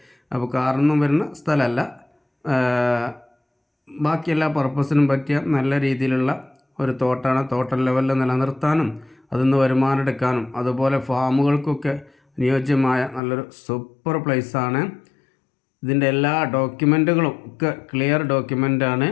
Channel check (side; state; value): right; drops out; at 13.2 s